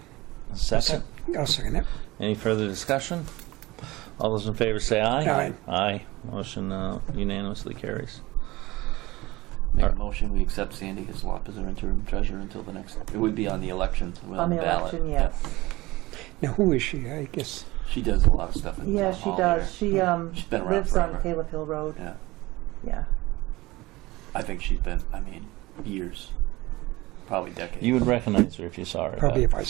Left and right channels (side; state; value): left; quieter; 20.2 dB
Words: Second. I'll second it. Any further discussion? All those in favor say aye. Aye. Aye. Motion unanimously carries. Make a motion. We accept Sandy Hislop as our interim treasurer until the next. It would be on the election. On the ballot. election, yes. Now, who is she? I guess. She does a lot of stuff. In Yeah, town she hall does. here. She She's been around lives forever. on Caleb Hill Road. Yeah. Yeah. I think she's been. I mean, years. Probably decades. You would recognize her if you saw her. Probably but- if I